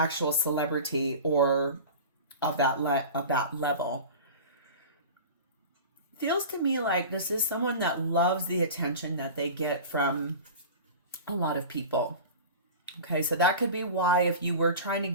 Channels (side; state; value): both; inverted; correlation -0.35